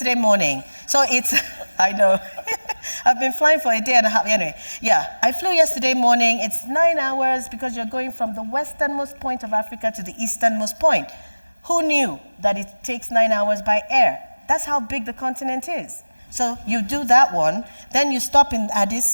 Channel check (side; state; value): both; inverted; correlation -1.00